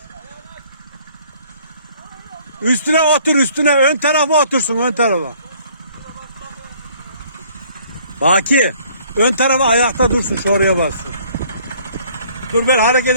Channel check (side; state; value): both; inverted; correlation -0.58